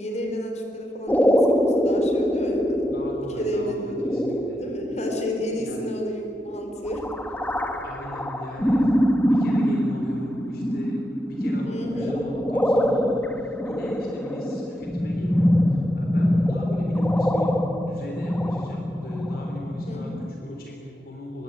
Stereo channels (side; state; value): both; normal; correlation 0.86